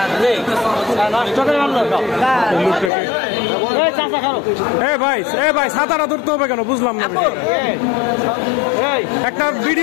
ভাই সাঁতারা ধরতে হবে কেন বুঝলাম না। একটা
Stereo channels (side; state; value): right; drops out; at 2.9 s